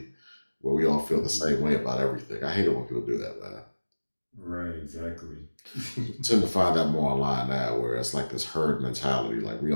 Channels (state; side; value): inverted; both; correlation -1.00